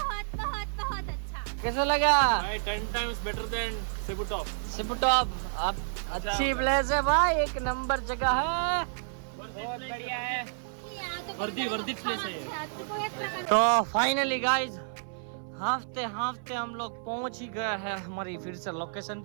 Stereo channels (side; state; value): left; silent; 55 dB below the other